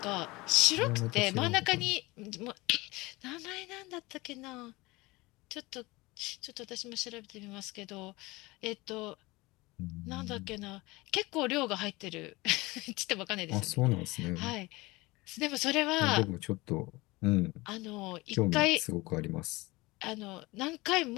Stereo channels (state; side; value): quieter; right; 22.1 dB